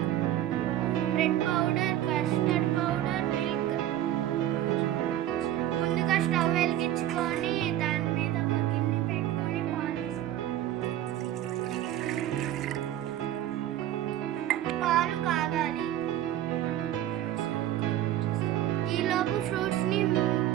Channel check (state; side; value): quieter; left; 12.6 dB